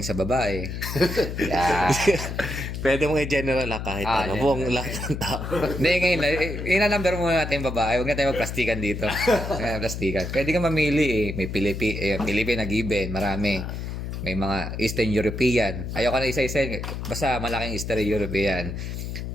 sa babae. Pwede mong i-general kahit buong lahat ng tao. Hindi, ngayon, ina-number muna natin yung babae. Huwag na tayo magplastikan dito. Plastikan. Pwede ka mamili eh. May Philippine na given. Marami. May mga Eastern European. Ayoko na isa-isa. Basta malaking Eastern European.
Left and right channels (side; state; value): left; noise; hum, 6 dB below the sound